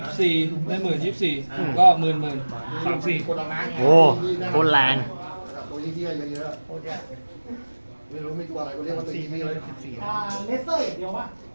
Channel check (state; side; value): inverted; both; correlation -1.00